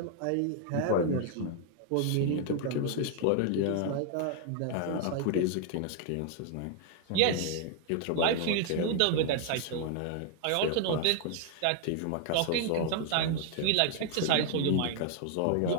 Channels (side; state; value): both; different; correlation 0.00